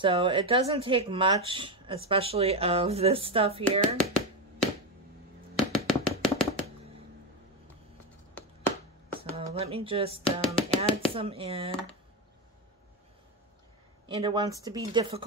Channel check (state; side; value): normal; both; correlation 0.12